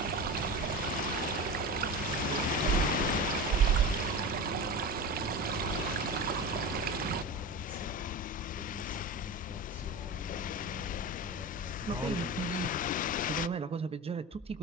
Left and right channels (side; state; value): both; normal; correlation 0.27